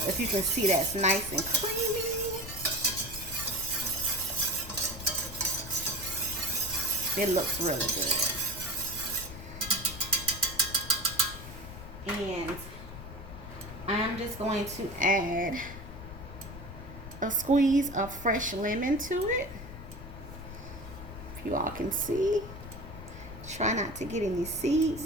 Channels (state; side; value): noise; left; rumble, 12 dB below the sound